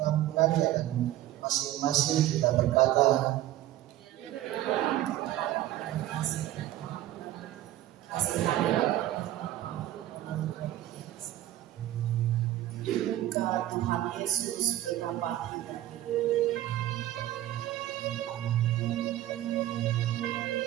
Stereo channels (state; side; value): quieter; left; 13.9 dB